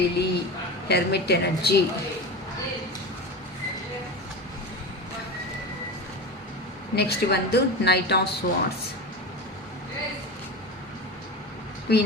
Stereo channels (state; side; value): normal; both; correlation 0.25